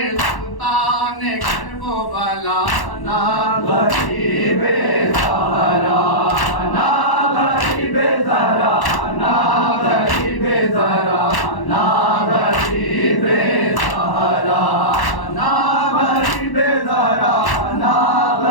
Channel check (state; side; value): late; right; 1.1 ms